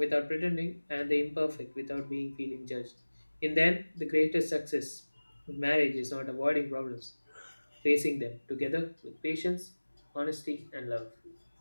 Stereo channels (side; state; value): both; inverted; correlation -1.00